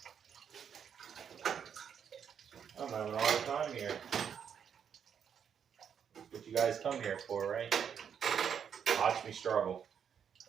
I'm having a hard time here. That's what you guys come here for, right? Watch me struggle.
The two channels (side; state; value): left; quieter; 7.8 dB